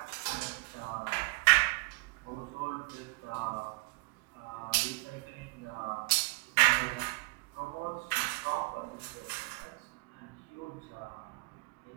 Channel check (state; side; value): quieter; left; 25.1 dB